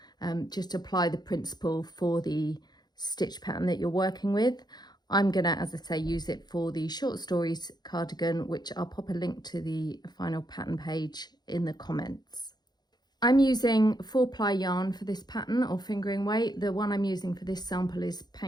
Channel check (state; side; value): late; right; 0.20 ms